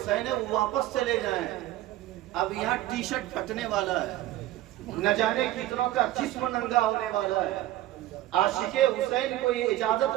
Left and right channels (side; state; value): left; quieter; 14.9 dB